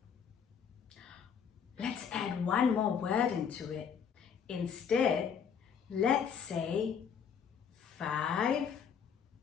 Let's add one more word into it. Instead, let's say 5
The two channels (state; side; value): quieter; right; 7.2 dB